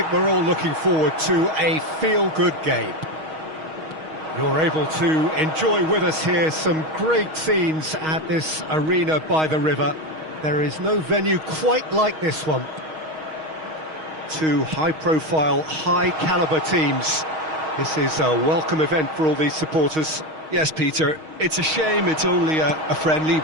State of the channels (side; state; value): left; late; 6.4 ms